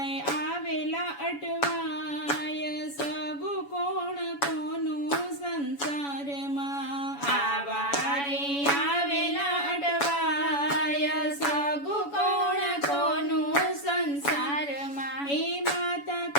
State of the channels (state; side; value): late; right; 7.1 ms